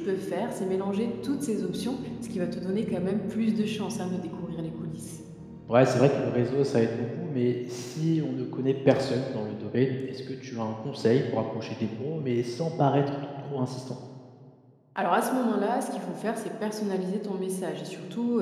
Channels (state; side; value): identical; both; correlation 1.00